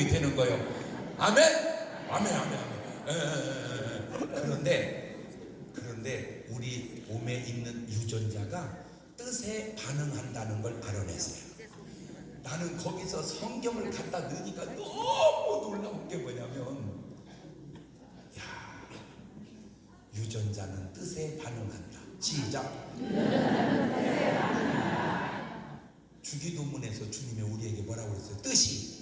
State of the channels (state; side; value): identical; both; correlation 1.00